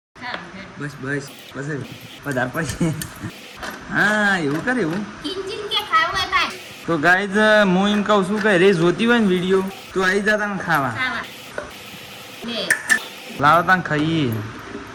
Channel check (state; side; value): identical; both; correlation 1.00